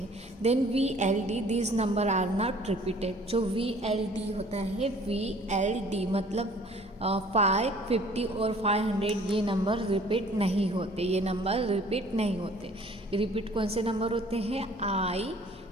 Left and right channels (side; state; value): both; normal; correlation 0.53